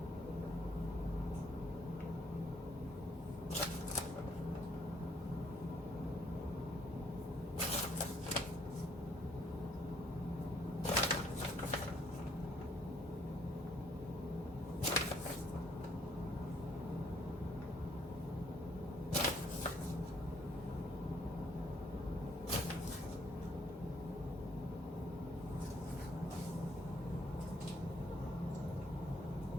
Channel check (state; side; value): normal; both; correlation 0.66